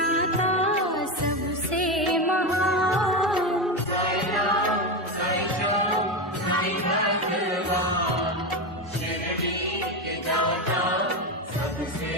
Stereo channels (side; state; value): both; normal; correlation 0.15